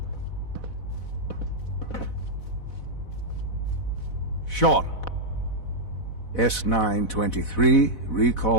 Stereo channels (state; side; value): late; right; 4.0 ms